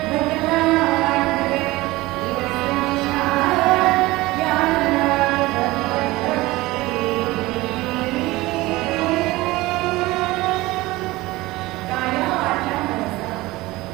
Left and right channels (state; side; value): quieter; left; 19.8 dB